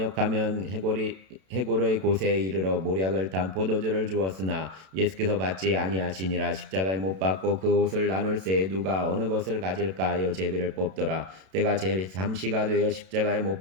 해골의 곳에 이르러 모략을 탄 포도주를 주었으나 예수께서 받지 아니하시니라. 십자가에 못 박고 그 옷을 나눌새 누가 어느 것을 가질까 하여 제비를 뽑더라. 때가 제3시가 되어 십자가에 못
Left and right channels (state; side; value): late; left; 32 ms